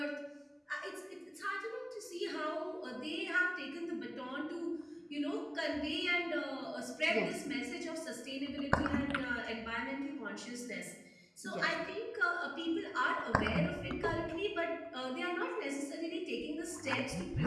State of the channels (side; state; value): both; identical; correlation 1.00